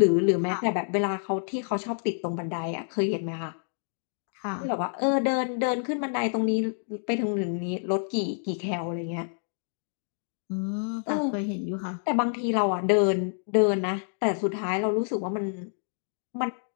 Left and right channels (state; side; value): silent; right; digital silence